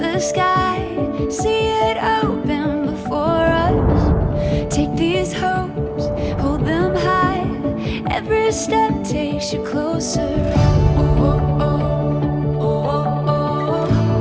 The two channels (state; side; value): identical; both; correlation 1.00